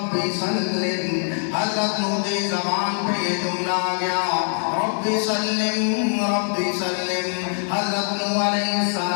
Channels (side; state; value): right; silent; digital silence